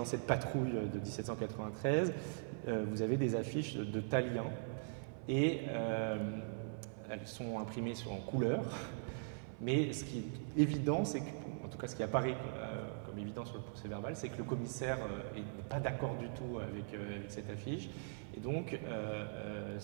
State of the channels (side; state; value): left; silent; 50 dB below the other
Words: cette patrouille de 1793, vous avez des affiches de Tallien, et elles sont imprimées en couleur. Mais ce qui est évident, c'est que, en tout cas ce qui apparaît comme évident sur le procès-verbal, c'est que le commissaire n'est pas d'accord du tout avec cette affiche. Et donc,